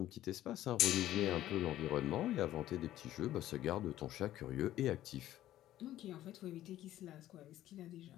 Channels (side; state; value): right; quieter; 13.5 dB